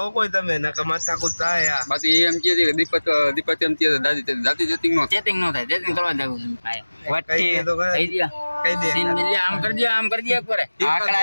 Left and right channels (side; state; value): both; inverted; correlation -1.00